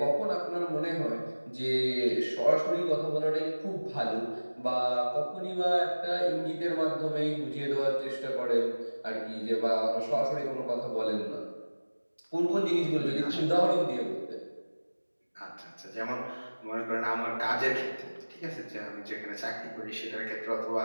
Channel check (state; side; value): inverted; both; correlation -1.00